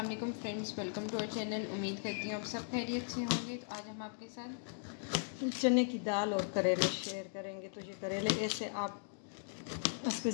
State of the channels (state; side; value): silent; right; digital silence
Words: वालेकुम friends, welcome to our channel. उम्मीद करती हूँ आप सब खैरियत से होंगे। तो आज हम आपके साथ चने की दाल और करेले शेयर करेंगे। तो ये करेले ऐसे आप उस पर